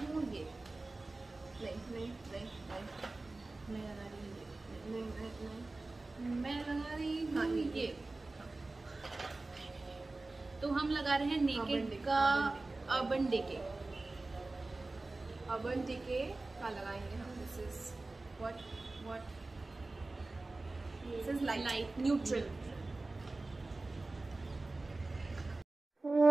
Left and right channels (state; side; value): quieter; left; 3.2 dB